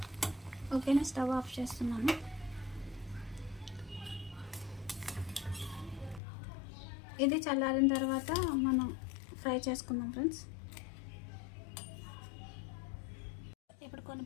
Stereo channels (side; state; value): right; drops out; at 6.2 s